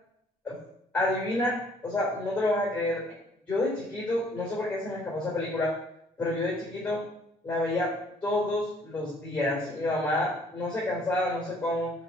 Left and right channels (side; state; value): both; normal; correlation 0.60